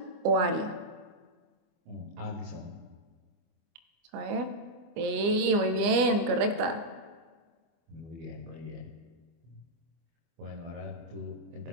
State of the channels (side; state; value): left; late; 25 ms